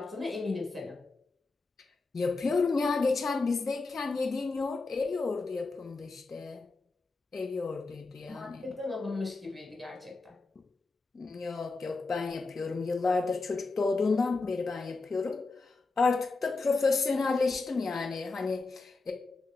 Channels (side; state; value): right; quieter; 3.8 dB